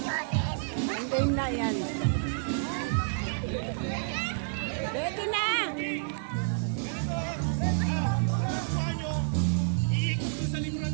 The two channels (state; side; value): silent; left; digital silence